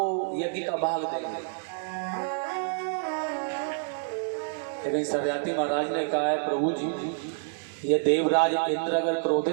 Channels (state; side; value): silent; left; digital silence